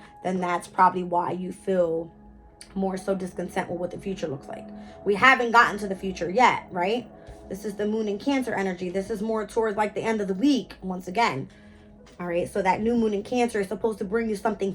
then that's probably why you feel more so discontent with what the future looks like. We haven't gotten to the future yet, right? This is the moon in Cancer energy. This is more towards like the end of the week, once again. All right, so that new moon in Cancer is supposed to bring you something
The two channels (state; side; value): identical; both; correlation 1.00